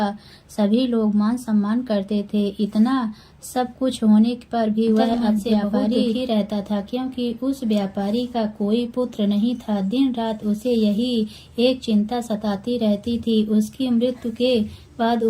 सभी लोग मान सम्मान करते थे। इतना सब कुछ होने पर भी वह अपने व्यापारी ही रहता था, क्योंकि उस व्यापारी का कोई पुत्र नहीं था। दिन रात उसे यही एक चिंता सताती रहती थी, उसकी मृत्यु के बाद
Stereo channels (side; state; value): both; identical; correlation 1.00